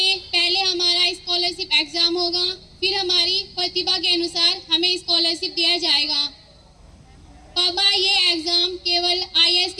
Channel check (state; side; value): identical; both; correlation 1.00